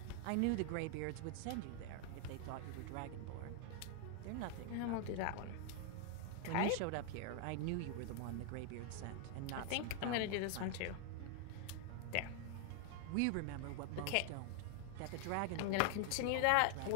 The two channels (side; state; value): both; different; correlation 0.00